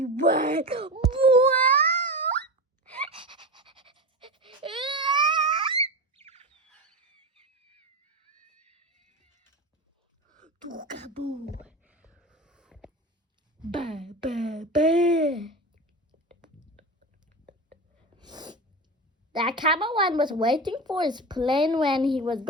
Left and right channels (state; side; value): normal; both; correlation 0.24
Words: went, Tookaboo. Bah, bah, bah. The cameraman was waiting for his plane when he was